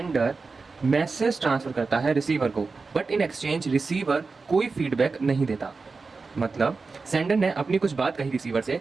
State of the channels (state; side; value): quieter; left; 4.3 dB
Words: मैसेज ट्रांसफर करता है रिसीवर को, बट इन एक्सचेंज रिसीवर कोई फीडबैक नहीं देता। मतलब सेंडर ने अपनी कुछ बात कही रिसीवर से,